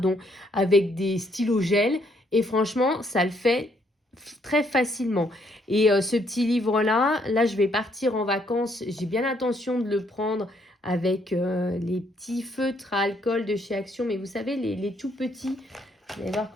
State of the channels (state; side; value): normal; both; correlation 0.70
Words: avec des stylos gel. Et franchement, ça le fait très facilement. Et ce petit livre-là, là, je vais partir en vacances. J'ai bien l'intention de le prendre avec les petits feutres à alcool de chez Action. Mais vous savez, les tout petits, vous allez voir